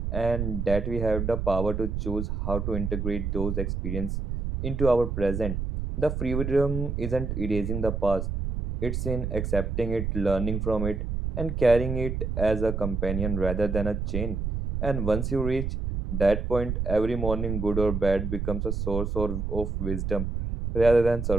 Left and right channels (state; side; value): noise; right; rumble, 2 dB below the sound